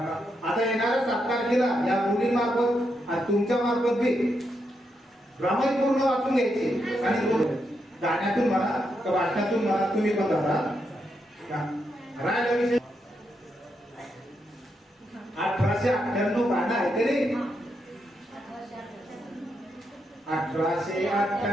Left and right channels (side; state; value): both; normal; correlation 0.82